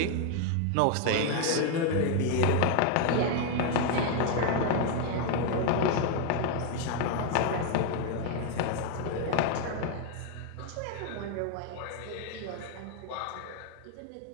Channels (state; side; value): different; both; correlation 0.00